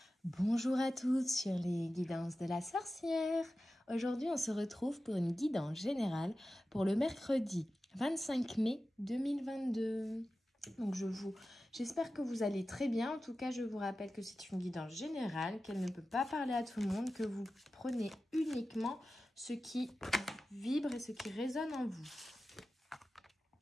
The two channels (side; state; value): both; normal; correlation 0.94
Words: Bonjour à tous sur les guidances de la sorcière. Aujourd'hui, on se retrouve pour une guidance générale pour le mercredi 25 mai 2022. Donc j'espère que vous allez très bien. En tout cas, je vous rappelle que c'est une guidance générale, qu'elle ne peut pas parler à tout le monde, que vous prenez uniquement ce qui vibre et ce qui résonne en vous.